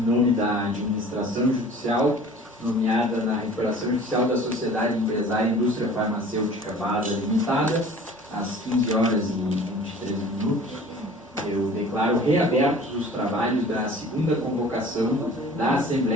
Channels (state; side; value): normal; both; correlation 0.46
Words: da administração judicial, nomeada na recuperação judicial da Sociedade Empresária Indústria Farmacêutica BASA Limitada, às 15 horas e 23 minutos, eu declaro reabertos os trabalhos da segunda convocação da